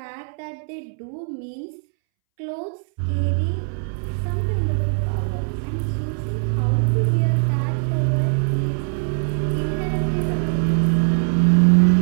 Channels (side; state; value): left; silent; 65 dB below the other